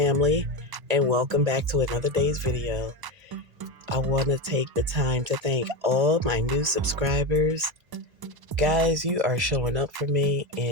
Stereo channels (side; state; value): left; late; 1.0 ms